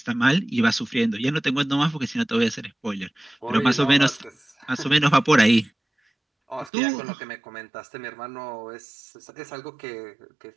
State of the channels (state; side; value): drops out; left; at 6.7 s